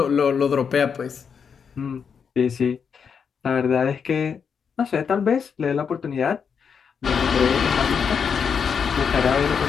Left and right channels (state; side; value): quieter; right; 6.6 dB